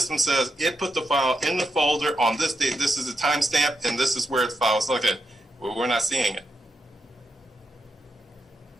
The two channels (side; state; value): both; normal; correlation 0.83